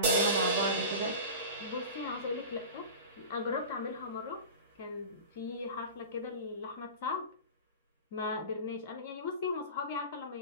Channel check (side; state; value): both; inverted; correlation -0.32